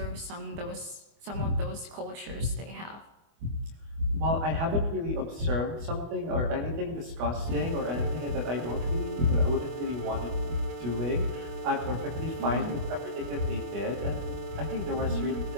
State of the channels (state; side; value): late; left; 24 ms